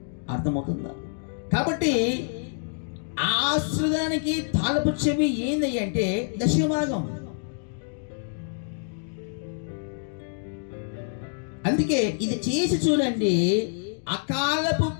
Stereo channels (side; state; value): right; silent; digital silence